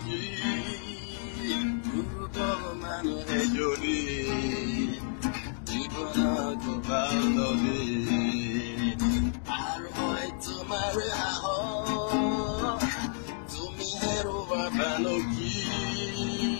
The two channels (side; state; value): right; silent; digital silence